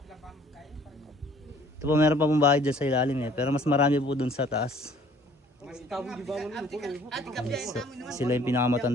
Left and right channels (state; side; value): normal; both; correlation 0.56